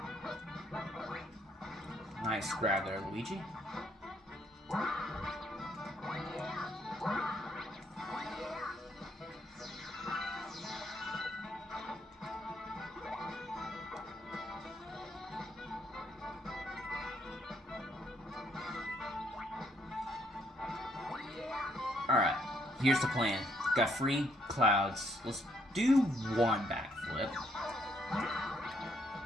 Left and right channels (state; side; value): normal; both; correlation 0.70